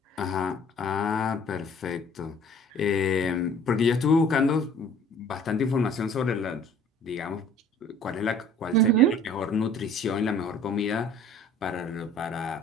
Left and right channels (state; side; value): normal; both; correlation 0.51